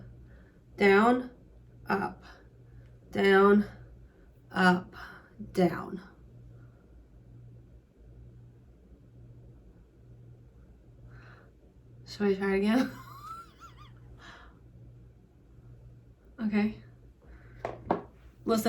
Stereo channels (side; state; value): both; identical; correlation 1.00